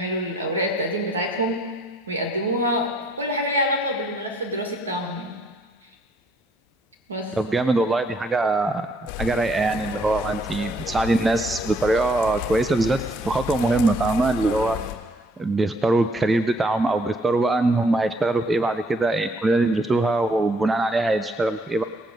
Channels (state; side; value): normal; both; correlation 0.66